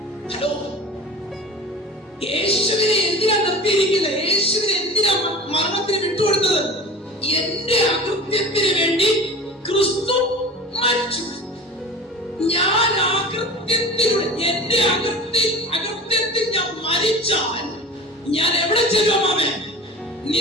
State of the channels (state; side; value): normal; both; correlation 0.36